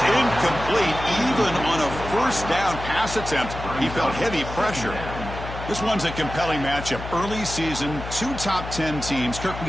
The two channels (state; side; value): noise; left; hum, 9 dB below the sound